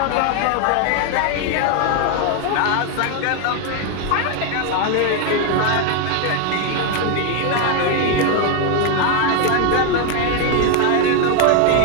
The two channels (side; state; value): both; different; correlation 0.01